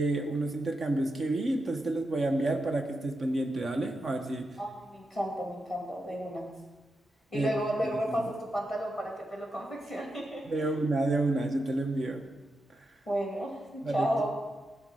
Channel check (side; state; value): both; normal; correlation 0.87